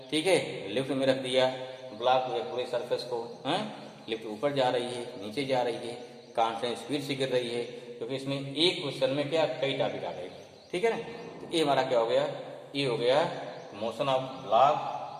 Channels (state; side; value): identical; both; correlation 1.00